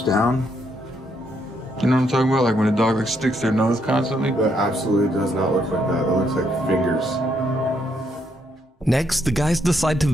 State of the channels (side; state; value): both; normal; correlation 0.75